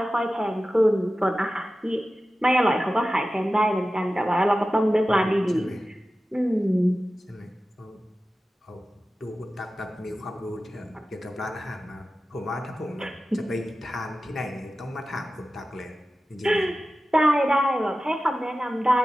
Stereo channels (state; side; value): normal; both; correlation 0.94